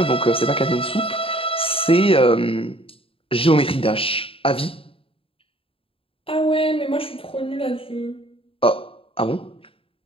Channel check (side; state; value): right; late; 0.27 ms